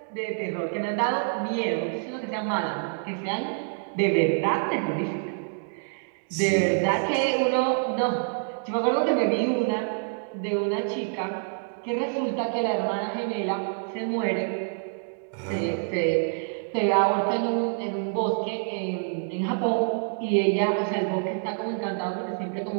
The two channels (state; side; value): silent; left; 60 dB below the other